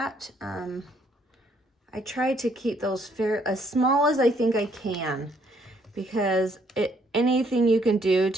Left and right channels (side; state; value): both; normal; correlation 0.68